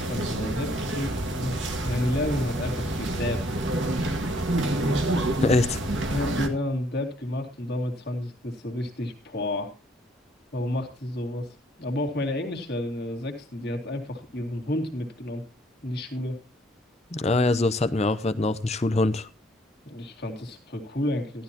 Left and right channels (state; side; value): normal; both; correlation 0.65